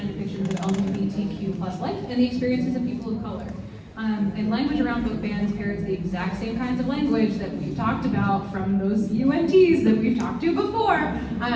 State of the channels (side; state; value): both; identical; correlation 1.00